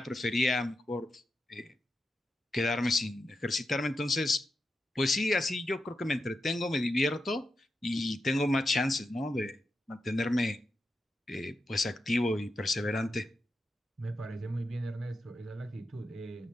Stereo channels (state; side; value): normal; both; correlation 0.88